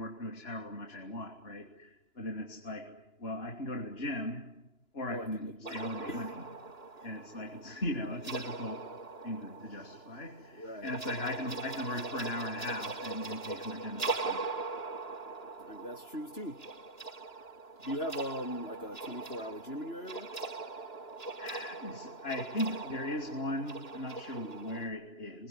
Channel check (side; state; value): right; late; 2.9 ms